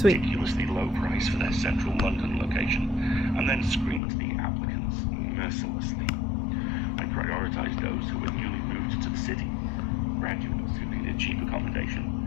low price for their central London location, and then screened the applicants mercilessly. I prioritized those who were newly moved to the city, graduates who needed cheap accommodation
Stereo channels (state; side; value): drops out; right; at 4.0 s